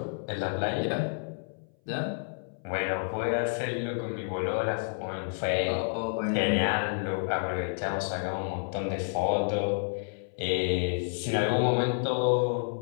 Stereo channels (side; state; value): right; silent; 57 dB below the other